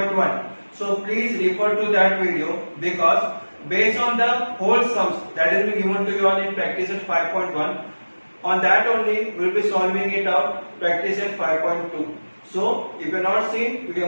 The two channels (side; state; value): both; inverted; correlation -1.00